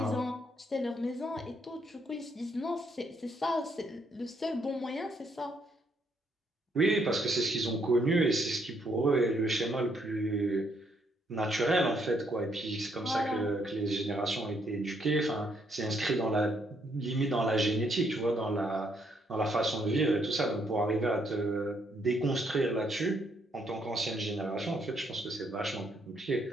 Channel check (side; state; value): both; normal; correlation 0.72